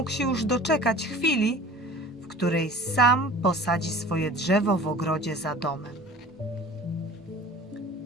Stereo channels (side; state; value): both; normal; correlation 0.43